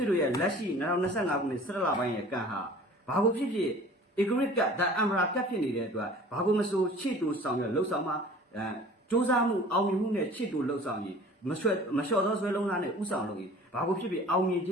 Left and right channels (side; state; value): both; normal; correlation 0.45